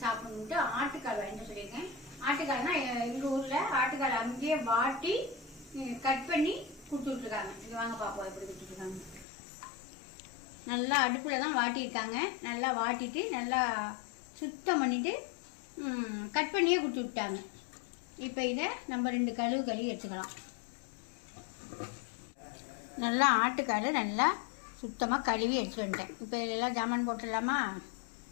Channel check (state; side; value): drops out; right; at 9.2 s